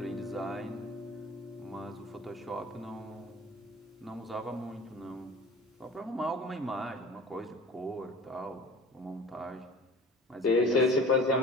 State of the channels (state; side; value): normal; both; correlation 0.41